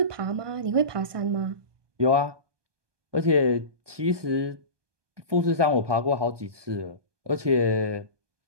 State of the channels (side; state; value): left; late; 1.2 ms